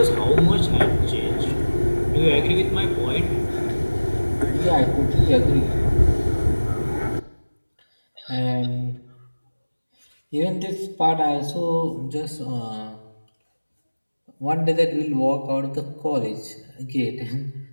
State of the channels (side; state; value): both; inverted; correlation -1.00